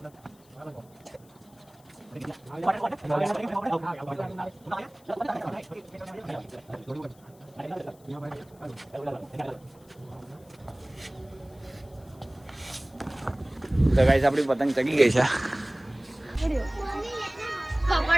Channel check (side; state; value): left; noise; hiss, 29 dB below the sound